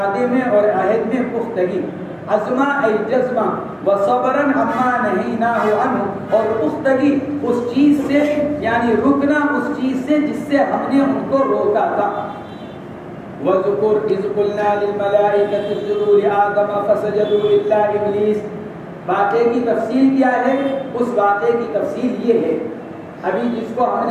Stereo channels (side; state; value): both; identical; correlation 1.00